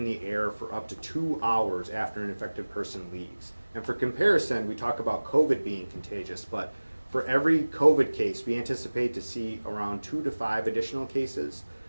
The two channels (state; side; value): inverted; both; correlation -1.00